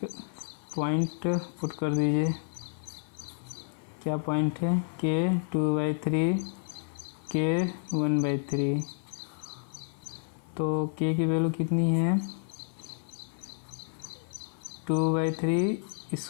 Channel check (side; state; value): right; silent; 56 dB below the other